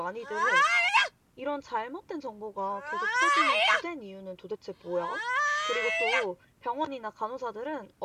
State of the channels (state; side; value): identical; both; correlation 1.00